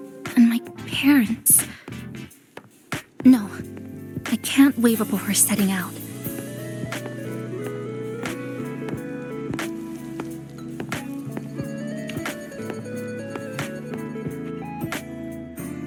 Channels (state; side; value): identical; both; correlation 1.00